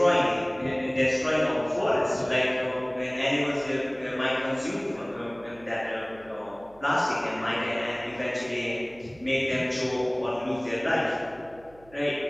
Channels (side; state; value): right; noise; hum, 26 dB below the sound